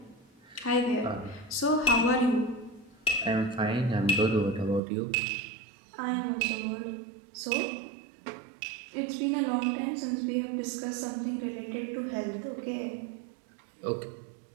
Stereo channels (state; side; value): drops out; left; at 4.8 s